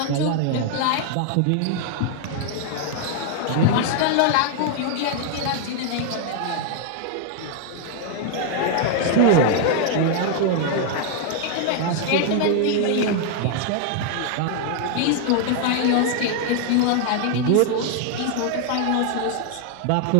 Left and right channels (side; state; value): both; different; correlation 0.00